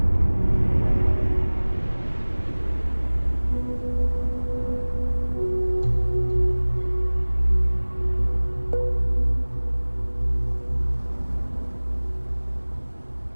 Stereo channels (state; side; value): inverted; both; correlation -1.00